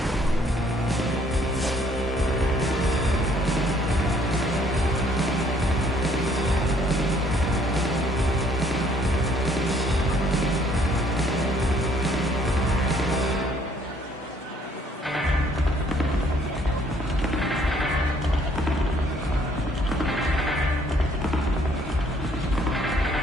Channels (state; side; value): normal; both; correlation 0.63